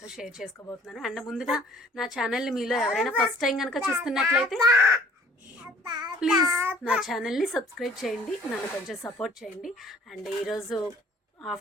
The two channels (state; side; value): normal; both; correlation 0.55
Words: షేర్ చేసుకోబోతున్నాను. అండ్ ముందుగా నా ఛానల్ని మీలో ఎవరైనా ఫస్ట్ టైం కనుక చూస్తున్నట్లయితే ప్లీజ్ నా ఛానల్ని సబ్స్క్రైబ్ చేయండి, నన్ను కొంచెం సపోర్ట్ చేయండి. అండ్ ఈరోజు